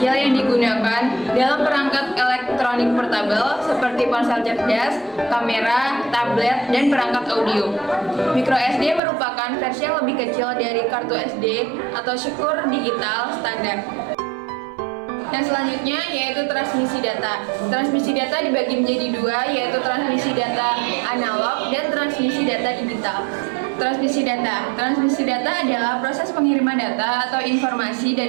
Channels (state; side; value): drops out; left; at 9.0 s